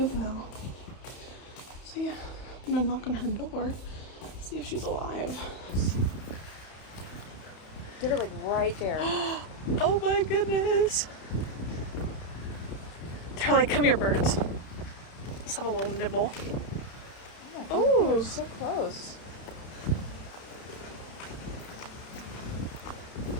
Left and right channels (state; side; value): late; right; 31 ms